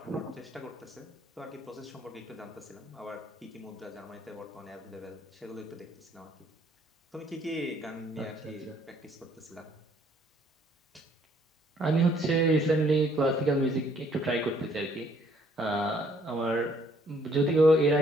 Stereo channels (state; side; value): normal; both; correlation 0.64